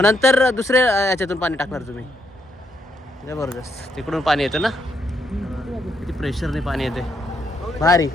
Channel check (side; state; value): both; normal; correlation 0.76